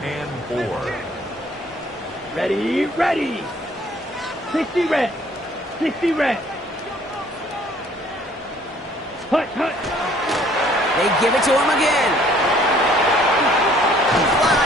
4. Ready. 60 red. 60 red. Hut. They give it to him again.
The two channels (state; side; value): normal; both; correlation 0.58